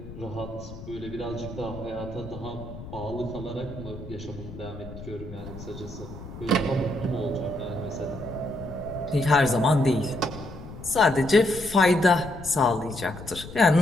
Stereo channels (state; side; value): noise; left; rumble, 13 dB below the sound